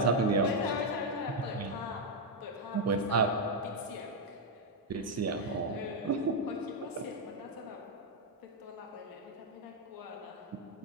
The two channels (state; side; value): normal; both; correlation 0.00